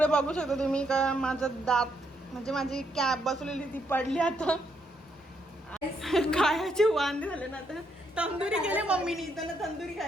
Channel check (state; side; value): normal; both; correlation 0.76